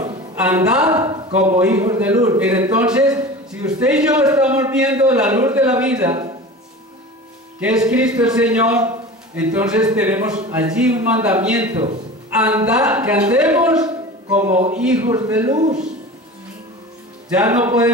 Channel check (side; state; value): both; normal; correlation 0.35